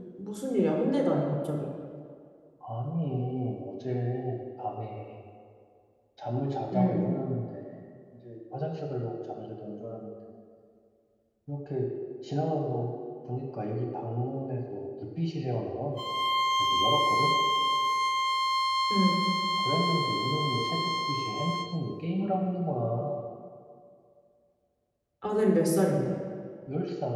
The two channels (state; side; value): identical; both; correlation 1.00